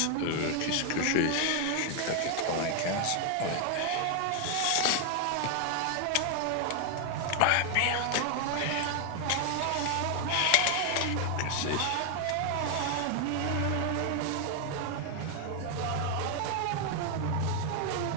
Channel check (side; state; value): both; different; correlation 0.00